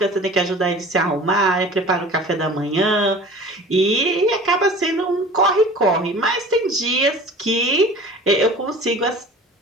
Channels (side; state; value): both; normal; correlation 0.42